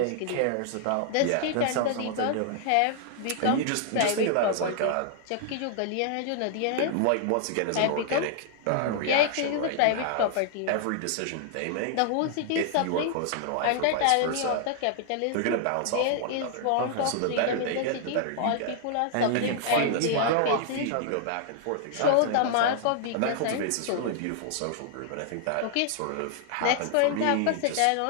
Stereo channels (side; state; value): both; different; correlation 0.00